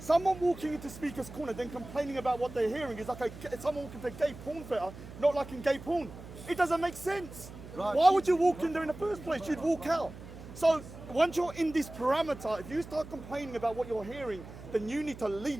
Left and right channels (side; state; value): right; noise; hum, 15 dB below the sound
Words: walking into Speaker's Corner then complaining about what they're hearing is like someone walking to a gay porn theatre, not liking gay porn. It doesn't make sense. Right. Why would you walk in there in the first place? You'd walk out. So once you're in this parameter, if you start complaining about what you're hearing, then you need to